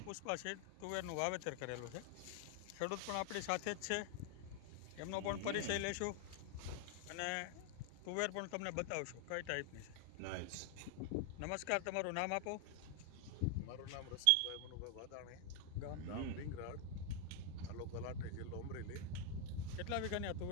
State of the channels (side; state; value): both; different; correlation 0.00